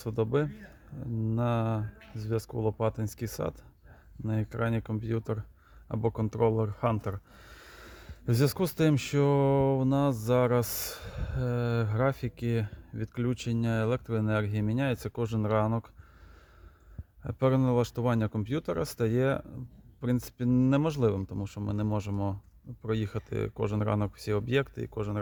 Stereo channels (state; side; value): identical; both; correlation 1.00